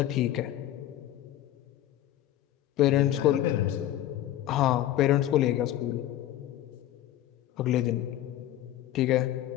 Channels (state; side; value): quieter; right; 13.1 dB